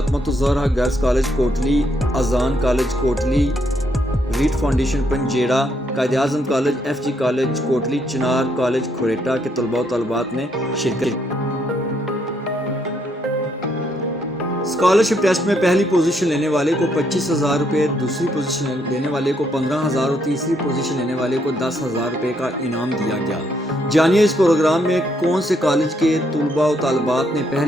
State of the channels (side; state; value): both; normal; correlation 0.74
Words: गर्ल्स कॉलेज कोटली, अजान college Kotli, Reed foundation Panjera, Quaid-e-Azam college, FG college Kotli, Chinar college Khuretta के तलबा व तालिबात ने शिरकत की। स्कॉलरशिप टेस्ट में पहली पोजीशन लेने वाले को 25,000 रुपये, दूसरी पोजीशन लेने वाले को 15,000 और तीसरी पोजीशन लेने वाले को 10,000 रुपये का इनाम दिया गया। जानिए इस प्रोग्राम में कौन से कॉलेज के तलबा व तालिबात ने